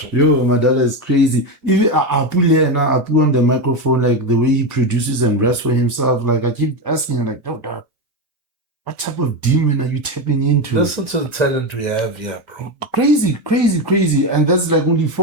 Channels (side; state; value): both; normal; correlation 0.14